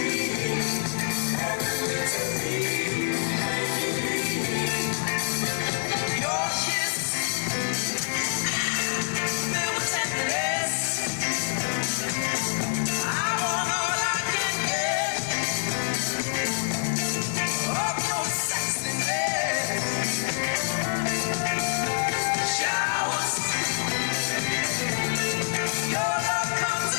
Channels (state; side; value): silent; right; digital silence